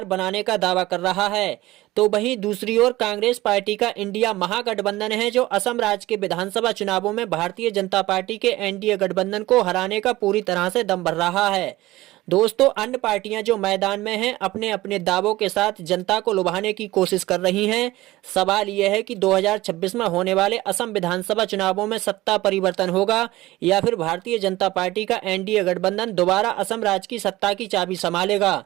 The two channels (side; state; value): left; quieter; 17.8 dB